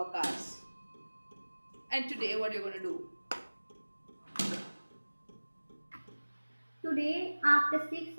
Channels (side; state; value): both; inverted; correlation -1.00